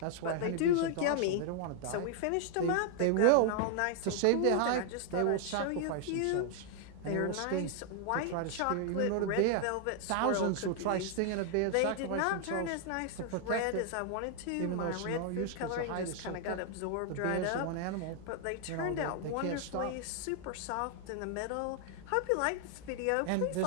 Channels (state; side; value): different; both; correlation 0.00